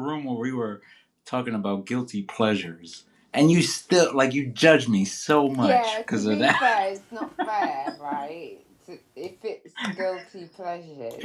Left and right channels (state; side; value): identical; both; correlation 1.00